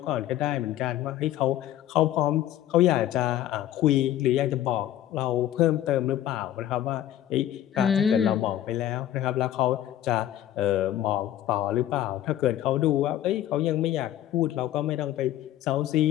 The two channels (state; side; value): quieter; right; 12.3 dB